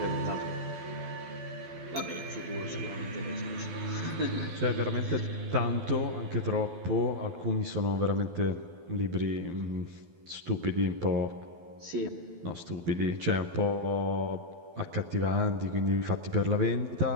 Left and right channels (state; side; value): late; left; 12 ms